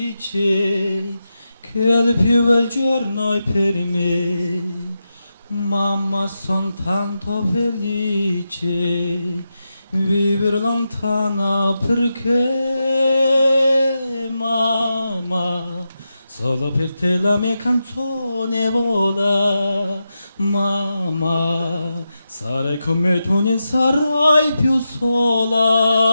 che il più bel giorno è per me. Mamma son tanto felice vivere lontana perché mamma solo per te la mia canzone vola. Mamma sarai con me, tu non sarai più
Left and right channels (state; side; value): inverted; both; correlation -0.89